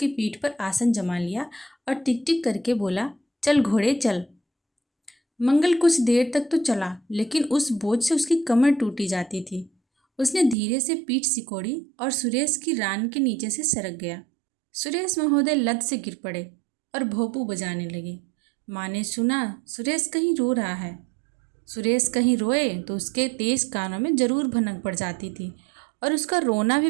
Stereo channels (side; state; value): left; drops out; at 10.6 s